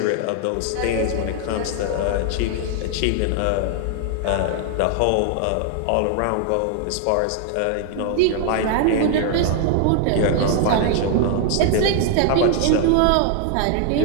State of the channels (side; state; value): both; different; correlation 0.00